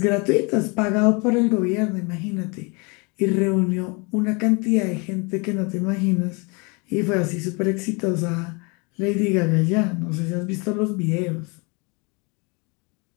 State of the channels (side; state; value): right; quieter; 30.3 dB